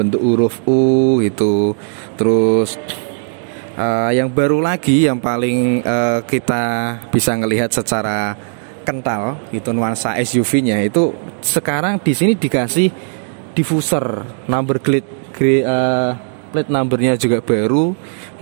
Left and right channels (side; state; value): left; silent; 69 dB below the other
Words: huruf U itu. Terus yang baru lagi yang paling kita bisa ngelihat secara kental itu nuansa SUV-nya itu sekarang di sini dikasih diffuser number plate numbernya juga baru,